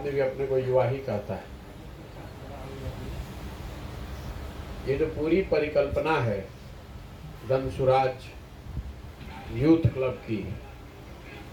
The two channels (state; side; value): identical; both; correlation 1.00